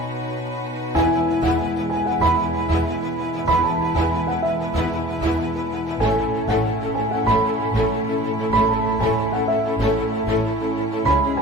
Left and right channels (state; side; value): normal; both; correlation 0.44